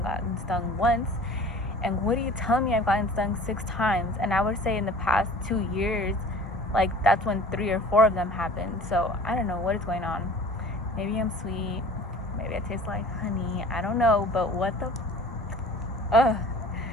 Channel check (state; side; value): normal; both; correlation 0.45